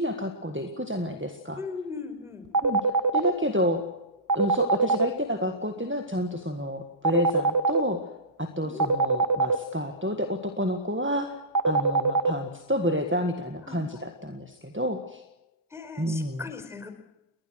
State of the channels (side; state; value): both; normal; correlation -0.20